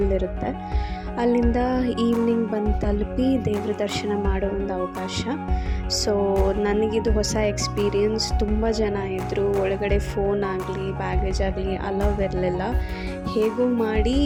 ಇರುತ್ತೆ. ಅಲ್ಲಿಂದ ಈವ್ನಿಂಗ್ ಬಂದು ತಲುಪಿ ದೇವ್ರ ದರ್ಶನ ಮಾಡೋ ಒಂದು ಅವಕಾಶ. ಸೊ ನನಗಿದು ಹೊಸ ಎಕ್ಸ್ಪೀರಿಯನ್ಸ್. ತುಂಬ ಜನ ಇದ್ದರು, ಒಳಗಡೆ ಫೋನ್ ಆಗಲಿ ಬ್ಯಾಗೇಜ್ ಆಗಲಿ ಅಲೌವ್ ಇರಲಿಲ್ಲ. ಹೇಗೋ ಮಾಡಿ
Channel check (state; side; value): identical; both; correlation 1.00